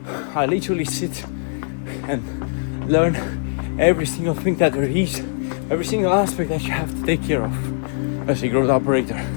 I literally sit and learn every single thing that there is, every single aspect that you have to take care of as a growth operator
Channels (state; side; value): silent; right; 56 dB below the other